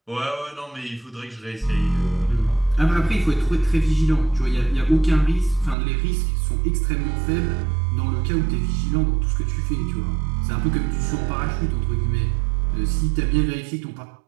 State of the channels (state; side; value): drops out; left; at 5.8 s